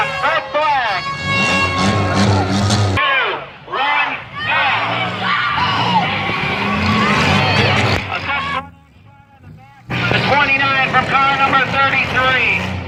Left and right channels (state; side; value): identical; both; correlation 1.00